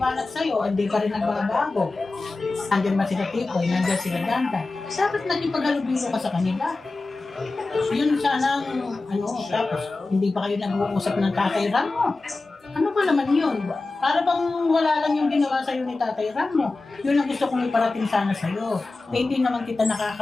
sa'yo, hindi ka rin nagbabago. Nandiyan man sila Tipoy, nandiyan sila Danda. Bakit naging paghalubilo ka sa kanila? Yun sana tapos hindi pa kayo nag-uusap ng Tatay Ram mo. Ano ba naman yun? Para bang wala lang yung ginawa sa'yo ni Tatay Ram mo. Yun ang gusto kong iparating sana sa'yo. Hindi naman kita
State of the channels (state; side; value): quieter; right; 3.4 dB